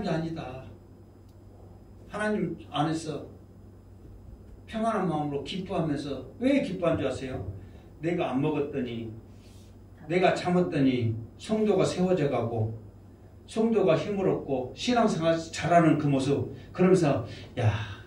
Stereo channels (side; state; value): both; identical; correlation 1.00